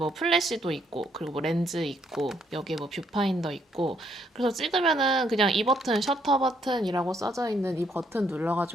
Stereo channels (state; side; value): normal; both; correlation 0.71